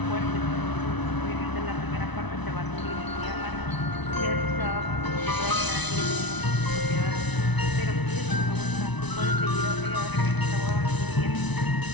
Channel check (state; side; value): late; right; 1.0 ms